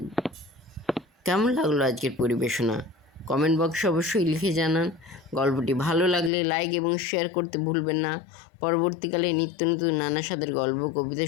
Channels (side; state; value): right; drops out; at 6.3 s